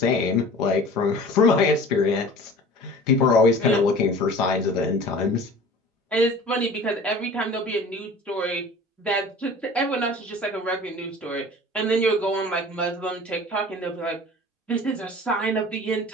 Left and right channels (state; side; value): normal; both; correlation 0.42